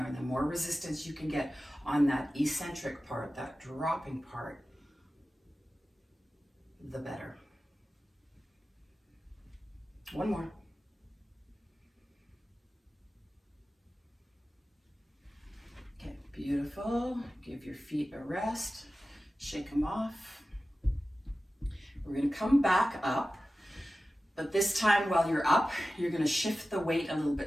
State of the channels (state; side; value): normal; both; correlation 0.95